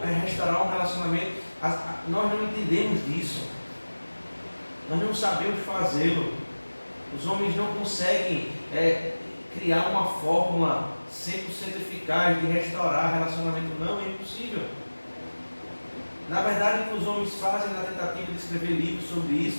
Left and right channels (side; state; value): both; inverted; correlation -1.00